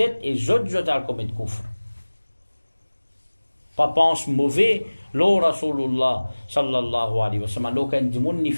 et jette à le commettre kufr. Pas pense mauvais, l'eau Rasulullah, sallallahu alayhi wa sallam, alors quand du monde, il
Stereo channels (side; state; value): both; inverted; correlation -1.00